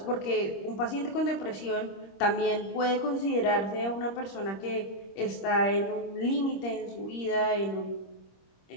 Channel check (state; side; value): late; right; 26 ms